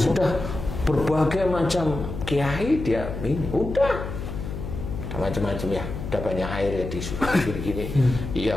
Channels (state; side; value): noise; left; hum, 7 dB below the sound